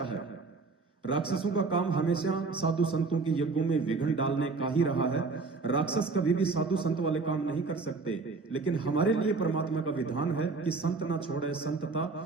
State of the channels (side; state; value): left; quieter; 4.1 dB